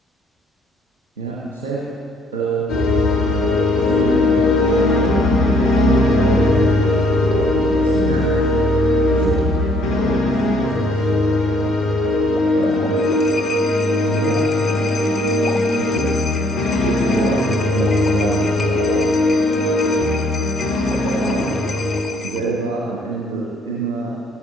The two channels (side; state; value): both; normal; correlation 0.64